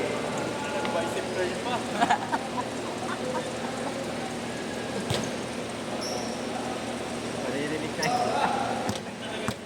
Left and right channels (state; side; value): identical; both; correlation 1.00